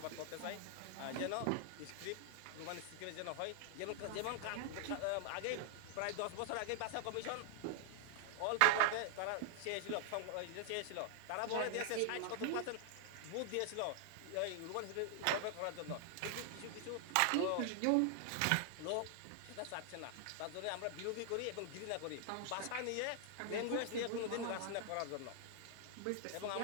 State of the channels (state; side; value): different; both; correlation 0.00